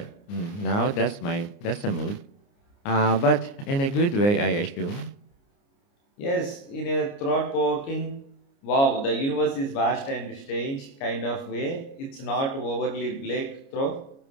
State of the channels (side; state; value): right; late; 29 ms